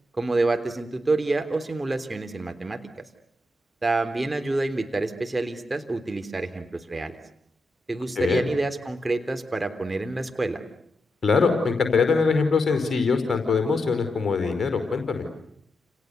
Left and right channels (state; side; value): normal; both; correlation 0.85